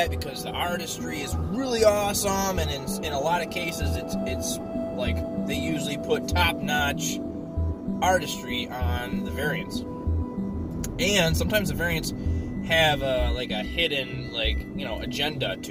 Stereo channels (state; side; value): identical; both; correlation 1.00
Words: because the artistry is really awesome, and in a lot of cases, it's like they usually put top-notch artistry on the variants. And sometimes the variants have a hidden agenda